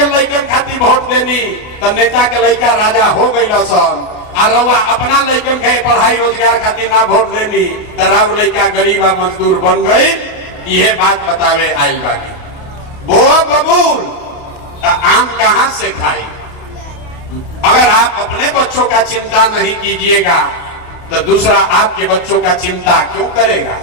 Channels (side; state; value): right; late; 28 ms